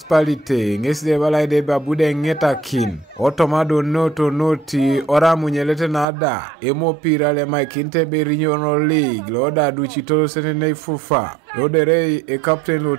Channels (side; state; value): left; drops out; at 6.1 s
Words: ngesde balaide babude ngeta kin otomado noto noti ora munyelete nada emopira le maikinte berinyono league loda duchitolo senene fufa lodere e captain lo